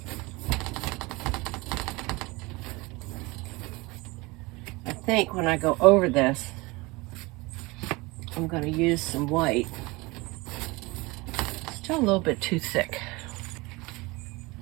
I think when I go over this, I'm going to use some white. Still a little bit too thick.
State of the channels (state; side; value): quieter; left; 23.7 dB